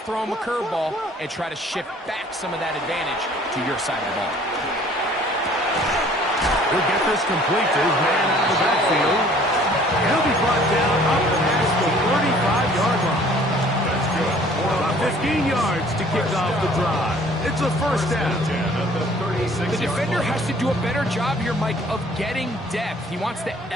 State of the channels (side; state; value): both; normal; correlation 0.54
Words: throw him a curveball and try to shift back some of that advantage to your side of the ball. He'll get this complete to his man out of the backfield. He'll be brought down up past the 35-yard line. That's good. About 15 yards to kick off the drive. It's a first down. The defender has to do a better job here, Mike, of getting depth. He wants to